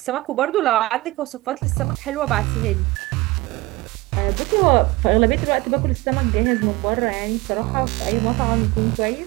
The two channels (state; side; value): quieter; left; 20.6 dB